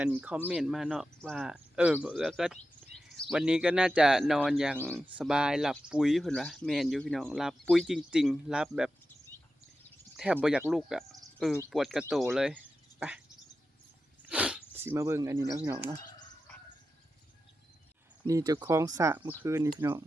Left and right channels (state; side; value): normal; both; correlation 0.91